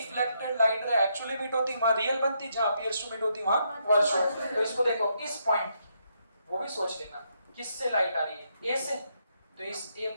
light ray actually meet होती वहां रियल बनती, जहां अपीयर्स टू मीट होती वहां वर्चुअल। तो इसको देखो, इस पॉइंट, वो भी सोच लेना किससे लाइट आ रही है, ए से, तो इस ए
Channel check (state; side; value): inverted; both; correlation -0.77